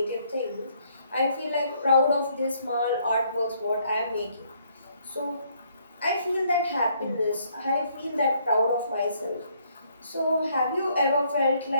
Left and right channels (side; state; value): both; inverted; correlation -0.67